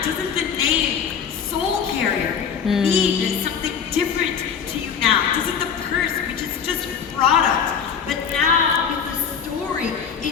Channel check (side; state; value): right; quieter; 7.1 dB